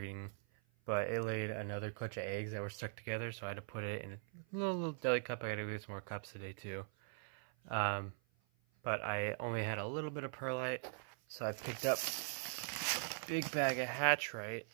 but it laid another clutch of eggs that were stuck together, so I had to put it in a little deli cup. I gotta get some more cups today too. But I only had a little bit of perlite, so I picked up a big bag of Hatchite.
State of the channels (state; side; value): silent; left; 50 dB below the other